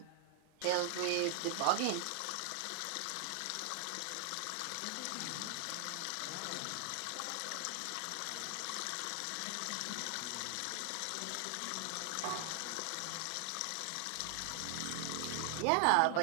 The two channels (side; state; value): both; different; correlation 0.00